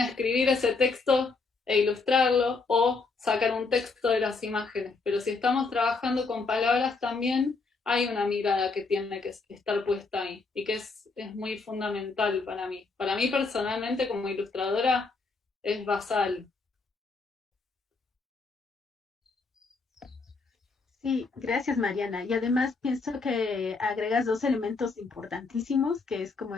escribir ese texto e ilustrarlo, o sacar un texto de las imágenes, pero si estamos trabajando con palabras también hay una mirada que tiene que estar puesta ahí, y que es muy fundamental para mí. Para mí personalmente como ilustradora es basal. Sí, gracias Mariana. Y además pienso que agregas dos elementos importantísimos, que es como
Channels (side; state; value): right; quieter; 4.1 dB